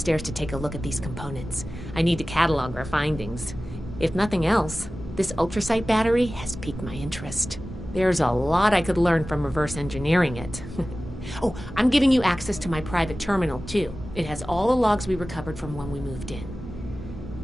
to take a look at these components. I need to catalog our findings. If nothing else, This ultrasight battery has piqued my interest. There's a lot I could learn from reverse engineering it. Oh, I'm giving you access to my private terminal, too. It has all the logs we recovered from when we moved in.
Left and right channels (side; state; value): both; normal; correlation 0.96